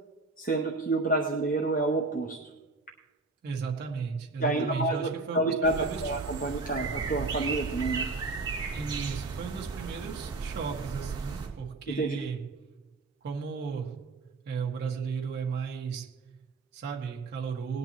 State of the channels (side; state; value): left; quieter; 3.2 dB